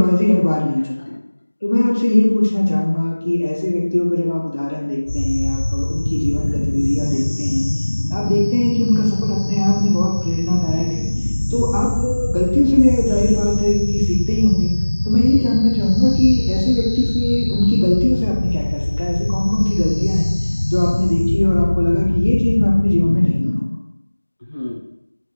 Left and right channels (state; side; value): inverted; both; correlation -1.00